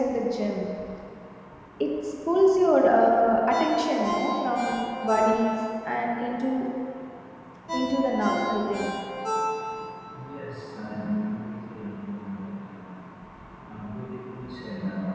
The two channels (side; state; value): both; identical; correlation 1.00